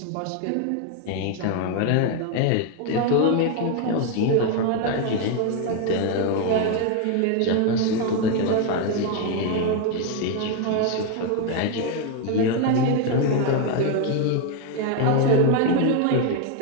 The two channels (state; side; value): different; both; correlation 0.01